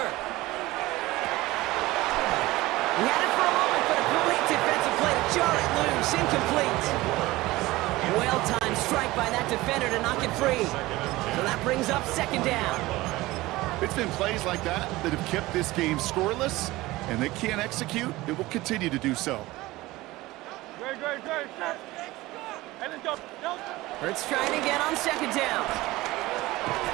He had it for a moment, but a great defensive play to jar it loose, incomplete. Well-timed strike by that defender to knock it free. So that brings up 2nd down. It's been plays like that that have kept this game scoreless, and they can't execute. It will continue to do so. Great. Set. And then go. Hurts trying again on 2nd down.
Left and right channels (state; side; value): quieter; left; 19.0 dB